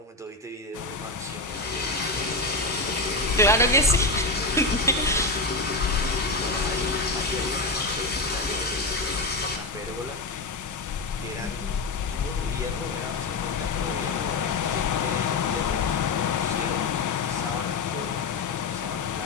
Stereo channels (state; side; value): quieter; right; 3.4 dB